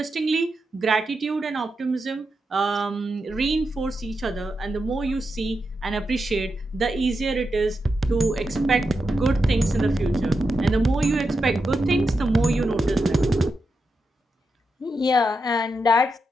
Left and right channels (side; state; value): both; normal; correlation 0.87